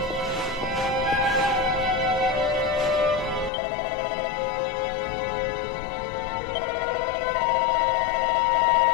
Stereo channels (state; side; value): drops out; right; at 3.5 s